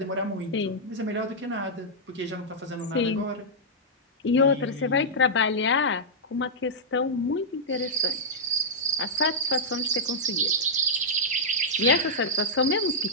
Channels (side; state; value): both; normal; correlation -0.08